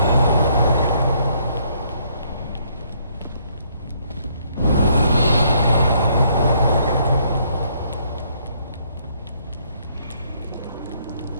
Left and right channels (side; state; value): both; inverted; correlation -0.68